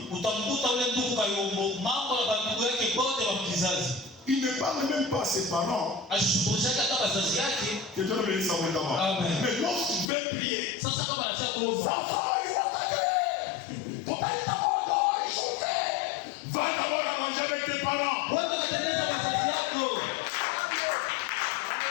Il ne parle même pas à ses parents. Que Dieu le bénisse abondamment. Mais lorsqu'il veut prier, ça va, il va va d'abord à manger avec tes parents.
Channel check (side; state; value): right; drops out; at 10.1 s